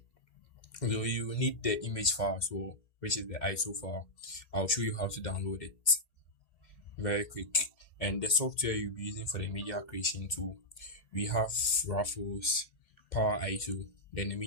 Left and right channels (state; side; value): late; right; 2.0 ms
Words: So you will need the image file as well, which is the ISO file. I'll show you how to download it very quick. And the software you'll be using for the media creation tool, we have Raffles, Power ISO, then the